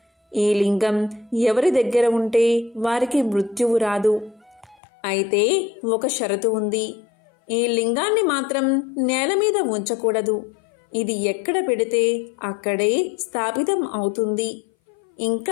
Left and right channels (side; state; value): right; drops out; at 4.8 s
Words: ఈ లింగం ఎవరి దగ్గర ఉంటే వారికి మృత్యువు రాదు. అయితే ఒక షరతు ఉంది. ఈ లింగాన్ని మాత్రం నేల మీద ఉంచకూడదు. ఇది ఎక్కడ పెడితే అక్కడే స్థాపితం అవుతుంది.